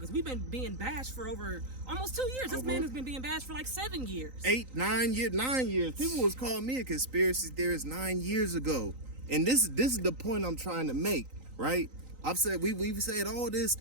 we've been being bashed for over almost 2 years. This man has been being bashed for like 7 years. 8, 9 years, 9 years. People was calling me a conspiracy theorist 9 years ago. And this is the point I'm trying to make, right? I've said, we've said all this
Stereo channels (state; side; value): late; left; 3.9 ms